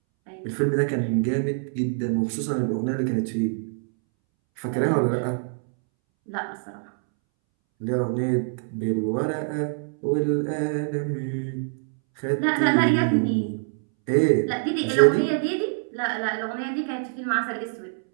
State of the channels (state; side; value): silent; left; 62 dB below the other